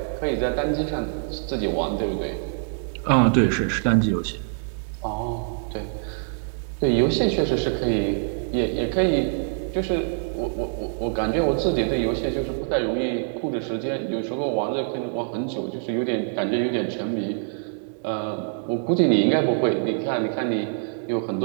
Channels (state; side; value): silent; left; 62 dB below the other